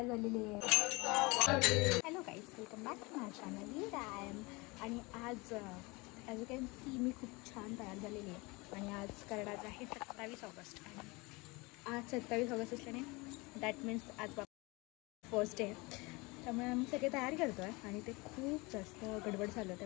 झालेली आहे. Hello guys, welcome back to my channel time. आणि आज ॲज यू कॅन सी मी खूप छान तयार झालेली आहे. आणि आज करणार आहे 27 ऑगस्ट. आणि आज 27 ऑगस्ट असल्याने दॅट मीन्स आज फर्स्ट डे. त्यामुळे आम्ही सगळे तयारी करतो आहे आणि ते खूप जास्त गडबड झालं,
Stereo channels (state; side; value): quieter; right; 25.4 dB